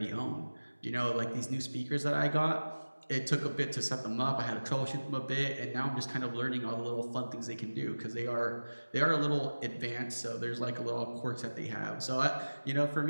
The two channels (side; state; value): both; inverted; correlation -1.00